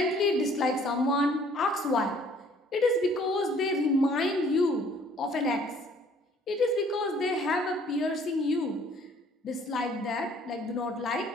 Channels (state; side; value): normal; both; correlation 0.57